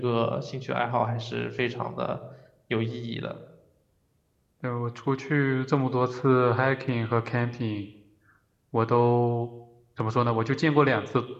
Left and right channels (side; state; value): both; identical; correlation 1.00